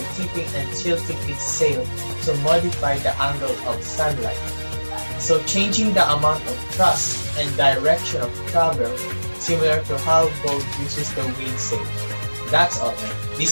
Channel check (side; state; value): both; inverted; correlation -1.00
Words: tipping and tilting its sail to modify the angle of sunlight, so changing the amount of thrust and direction of travel, similar to how boat uses the wind sail. That's all.